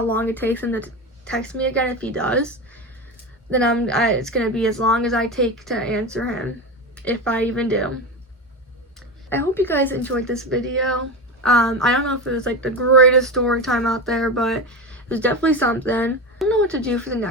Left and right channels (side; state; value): both; normal; correlation 0.21